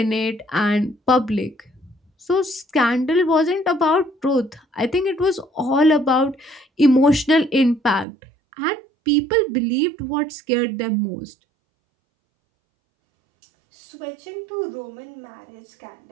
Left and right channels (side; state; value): left; drops out; at 8.1 s